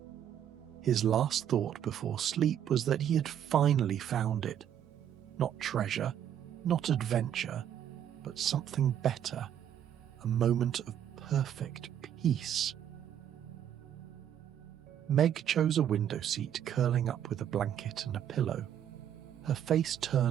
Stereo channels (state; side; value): quieter; left; 9.9 dB